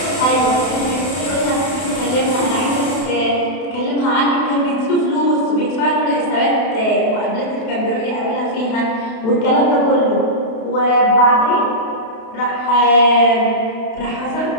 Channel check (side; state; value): right; late; 32 ms